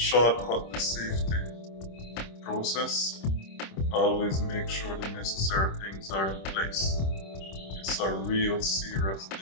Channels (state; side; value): late; right; 26 ms